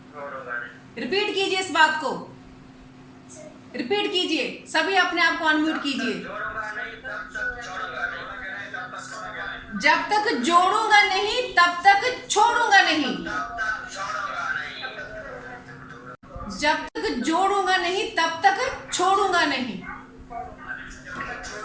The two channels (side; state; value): both; identical; correlation 1.00